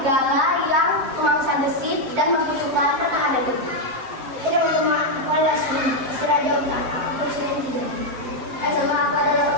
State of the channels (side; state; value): left; late; 7.6 ms